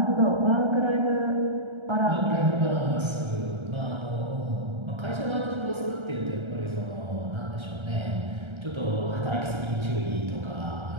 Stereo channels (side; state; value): left; late; 1.3 ms